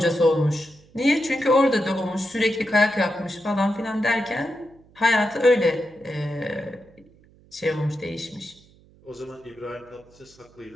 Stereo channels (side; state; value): right; noise; hum, 28 dB below the sound